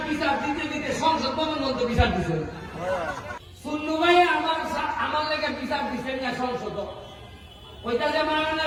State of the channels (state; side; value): identical; both; correlation 1.00